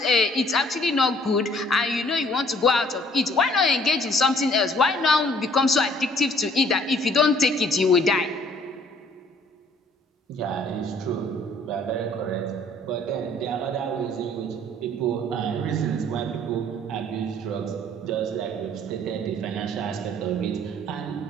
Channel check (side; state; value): both; normal; correlation 0.58